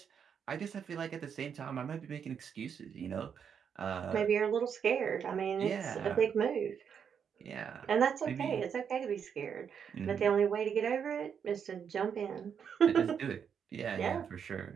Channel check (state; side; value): quieter; left; 7.4 dB